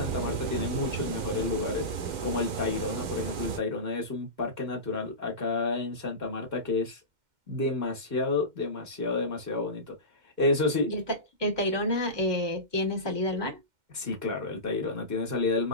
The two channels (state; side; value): late; left; 2.1 ms